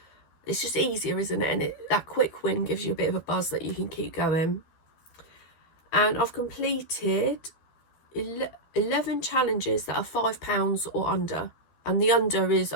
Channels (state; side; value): late; right; 12 ms